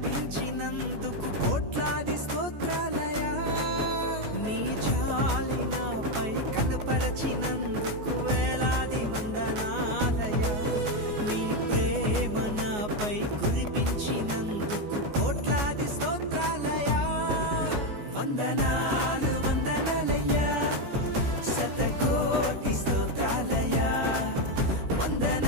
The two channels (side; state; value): left; late; 14 ms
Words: కోట్లాది స్తోత్రాలయ్యా నీ జాలి నాపై కనపరచినందుకు వేలాది వందనాలయ్యా నీ ప్రేమ నాపై కురిపించినందుకు కోట్లాది స్తోత్రాలయ్యా వందనాలు వందనాలయ్యా శతకోటి స్తోత్రాలయ్యా